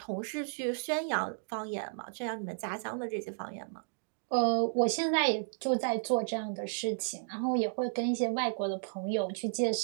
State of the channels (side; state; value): left; silent; digital silence